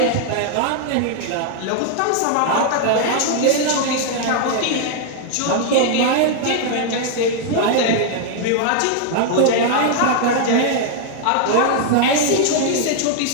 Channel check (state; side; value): different; both; correlation 0.00